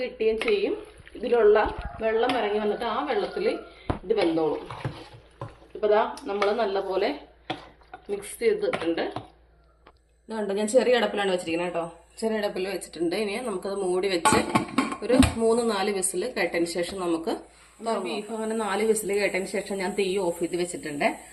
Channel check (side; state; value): both; identical; correlation 1.00